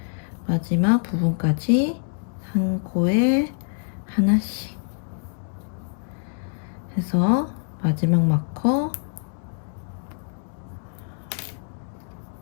마지막 부분까지 한 코에 하나씩 해서 마지막 마커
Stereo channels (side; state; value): right; silent; digital silence